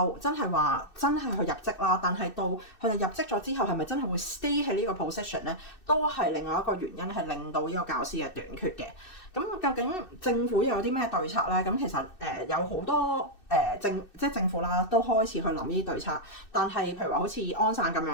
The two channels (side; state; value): right; late; 2.6 ms